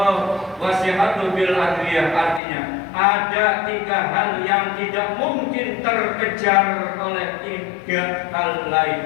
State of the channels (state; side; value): drops out; right; at 2.4 s